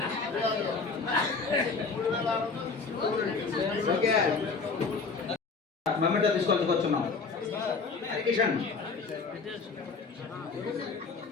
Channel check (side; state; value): right; quieter; 4.6 dB